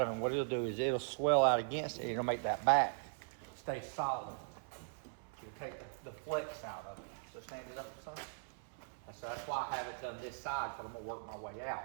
of it. And what it'll do is it'll swell out against it. It'll make that back stay solid. You'll take the flex out of it. So stand it up, son. And so that's why I have it done this side, because I'm gonna work my way out.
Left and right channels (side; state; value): left; silent; 51 dB below the other